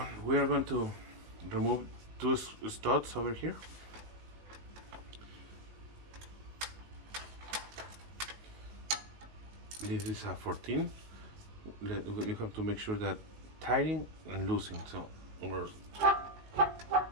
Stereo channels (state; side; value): late; left; 19 ms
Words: we are going to remove two studs over here. This is a 14. We have to make sure that tightening and loosening, so or